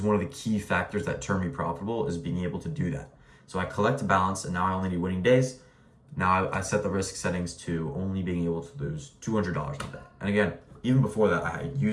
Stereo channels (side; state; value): both; identical; correlation 1.00